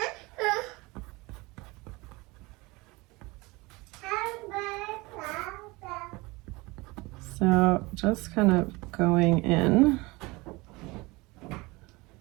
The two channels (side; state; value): left; quieter; 23.4 dB